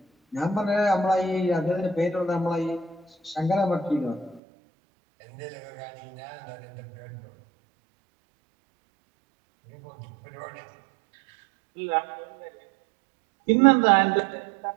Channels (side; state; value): left; drops out; at 4.4 s